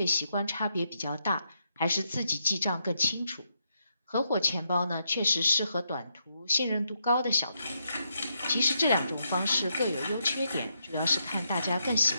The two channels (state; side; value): inverted; both; correlation -0.80